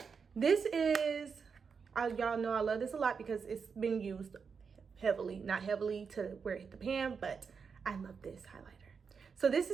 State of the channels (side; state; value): left; quieter; 5.8 dB